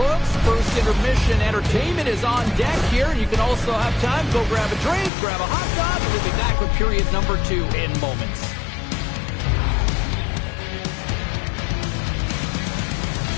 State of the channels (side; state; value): right; drops out; at 5.1 s